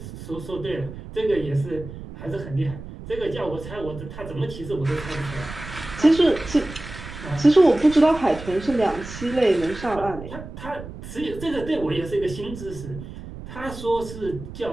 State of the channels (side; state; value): right; noise; rumble, 12 dB below the sound